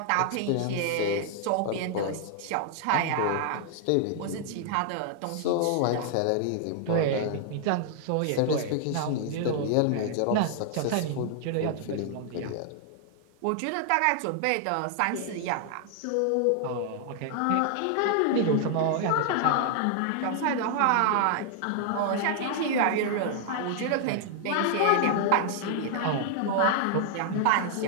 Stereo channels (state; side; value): different; both; correlation -0.01